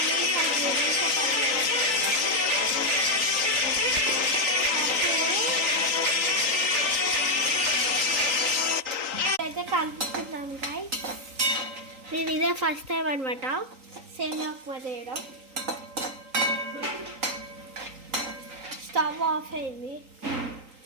కలుపుకుంటాం గాయ్స్. నేను ఇదే ఫస్ట్ టైం అనమాట సేమియా ఉప్మా చేయడం. స్టవ్ ఆఫ్ అయింది.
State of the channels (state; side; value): late; left; 3.8 ms